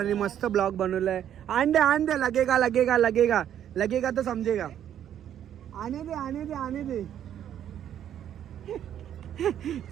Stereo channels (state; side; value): quieter; left; 10.2 dB